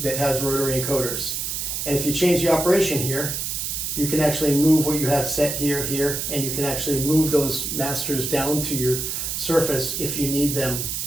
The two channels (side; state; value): right; noise; hiss, 3 dB below the sound